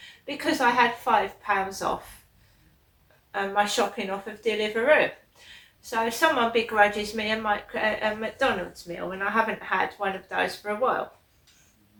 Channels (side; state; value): both; identical; correlation 1.00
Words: because I had £5 off my shopping off of Deliveroo. So someone begrudges me a McDonald's meal, and I haven't had one of those for a while.